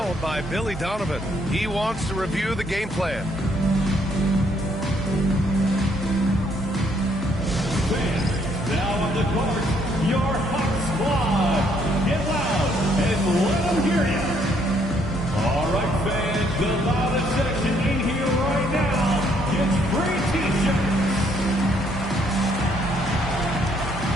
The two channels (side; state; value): both; normal; correlation 0.69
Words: by Billy Donovan. He wants to review the game plan. Now on the court, your Hawk Squad. Get loud and let them hear you. All right, fans, the loudest section in here right now gets free T-shirts.